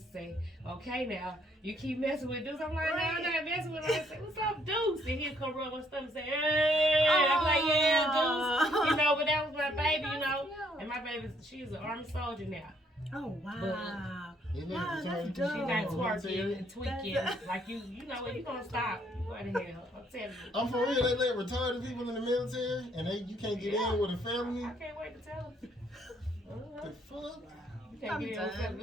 to say, "Okay, now you keep messing with dudes." I'm like, "No, I'm not messing with them." I say, "What's up, Deuce?" And he'll come rub my stomach and say, "Hey." I'm like, "Yeah, Deuce." You know, but that was my baby, you know. And my baby, she's an Army soldier now. Oh wow! But, wow, that's She dope. got twerking and tweaking. Like you know what? You gonna stop? You going to hell? I'm telling you. I'm for real. They let retarded people in the military, and you can't get in with a felony. I can't wait to tell them. The fuck? You can't get in with a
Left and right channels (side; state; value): both; normal; correlation 0.67